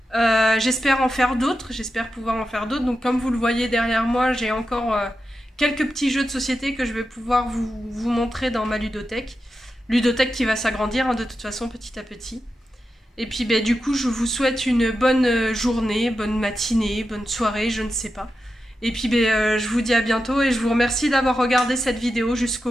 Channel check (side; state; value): both; normal; correlation 0.90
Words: J'espère en faire d'autres, j'espère pouvoir en faire d'autres. Donc comme vous le voyez derrière moi, j'ai encore quelques petits jeux de société que je vais pouvoir vous montrer dans ma ludothèque. Ludothèque qui va s'agrandir de toute façon petit à petit. Et puis du coup, je vous souhaite une bonne journée, bonne matinée, bonne soirée, je ne sais pas. Et puis je vous dis à bientôt et je vous remercie d'avoir regardé cette vidéo